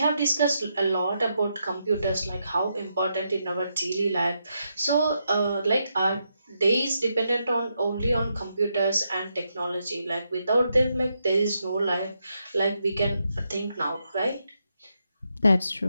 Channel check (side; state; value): both; inverted; correlation -0.81